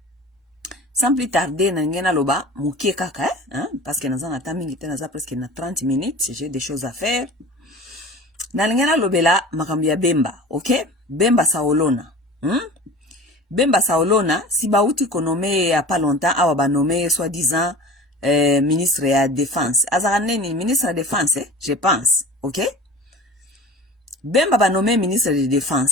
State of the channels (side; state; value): both; normal; correlation 0.39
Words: Sans plus tarder, nangena loba, moukie kaka, hein? Parce que nous avons attendu presque 30 minutes. J'ai des choses à faire. Nangena lobela, makambia Bemba. Ok? Bemba Saolona. Bemba Saolona, si bauti konome ya pas longtemps, awa ba nommé soi-disant ministre de la défense. Azaraneni, ministre de la défense, je pense. Ok? Bemba ba nommé ministre de la